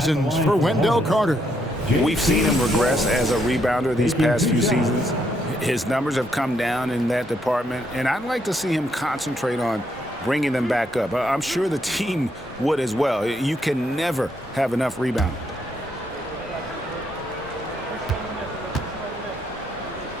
for Wendell Carter. We've seen him regress as a rebounder these past few seasons. His numbers have come down in that department, and I'd like to see him concentrate on bringing them back up. I'm sure the team would as well. You can never have enough rebound.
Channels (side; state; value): both; normal; correlation 0.75